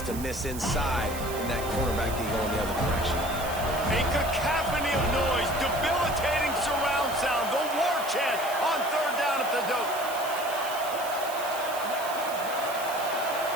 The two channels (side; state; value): right; noise; hiss, 12 dB below the sound